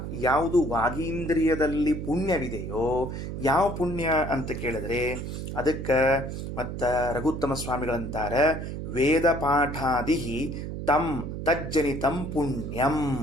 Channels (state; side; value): noise; right; hum, 6 dB below the sound